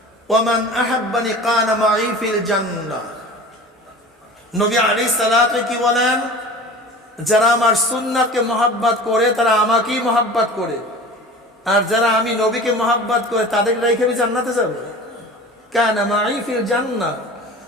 ওয়া মান আহাব্বানি কানা মাই ফিল জান্নাহ। নবী আলাইহিস সালাতু কি বলেন? যারা আমার সুন্নাতকে মহব্বত করে তারা আমাকেই মহব্বত করে, আর যারা আমি নবীকে মহব্বত করে তাদেরকে রেখে আমি জান্নাতে যাব। কানা মাই ফিল জান্নাহ,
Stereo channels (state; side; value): normal; both; correlation 0.38